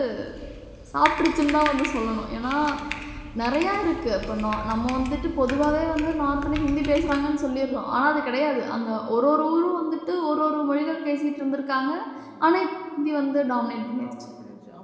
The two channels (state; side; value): identical; both; correlation 1.00